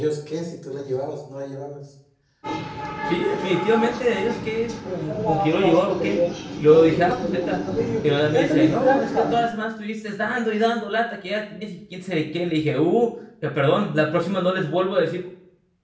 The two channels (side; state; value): both; identical; correlation 1.00